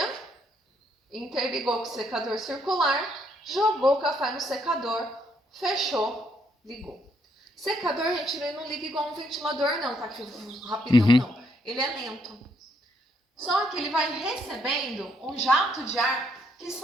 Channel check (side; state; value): both; normal; correlation 0.72